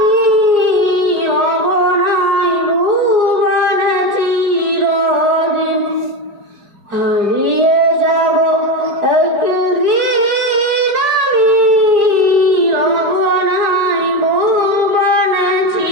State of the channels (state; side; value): late; left; 4.9 ms